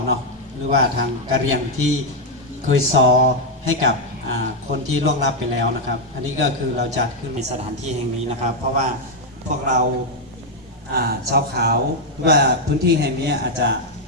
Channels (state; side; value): normal; both; correlation 0.00